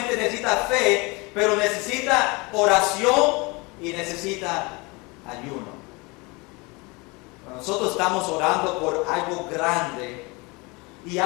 necesita fe, pero necesita oración y necesita ayuno. Cuando nosotros estamos orando por algo grande y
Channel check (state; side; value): quieter; right; 26.8 dB